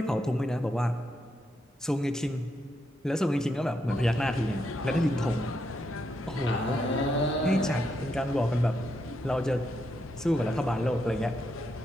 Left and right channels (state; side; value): normal; both; correlation 0.81